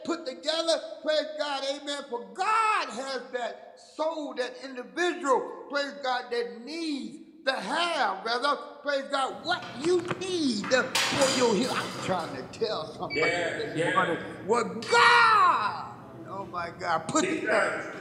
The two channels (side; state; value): both; identical; correlation 1.00